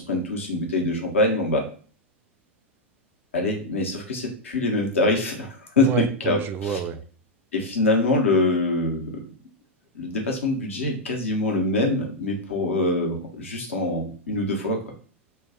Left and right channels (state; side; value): normal; both; correlation -0.02